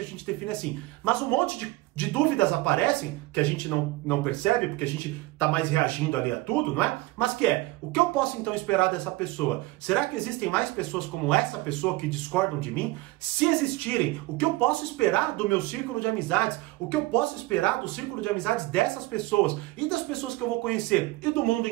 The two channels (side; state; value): left; quieter; 19.7 dB